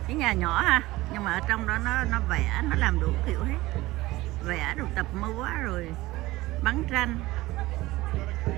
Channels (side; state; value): left; quieter; 18.7 dB